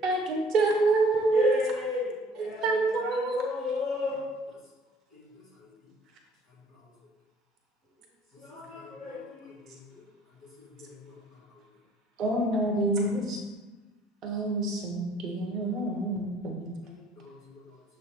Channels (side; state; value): both; normal; correlation 0.56